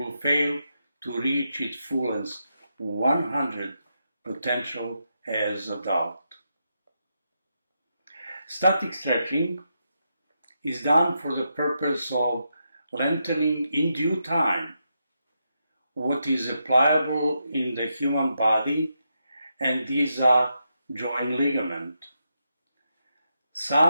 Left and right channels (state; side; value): inverted; both; correlation -0.84